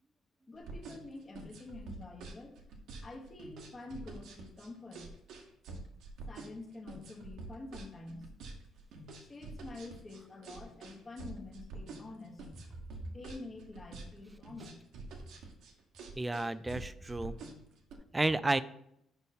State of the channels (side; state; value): both; normal; correlation 0.91